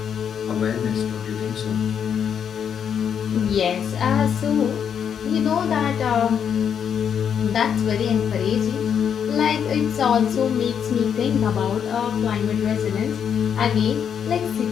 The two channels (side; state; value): right; quieter; 7.9 dB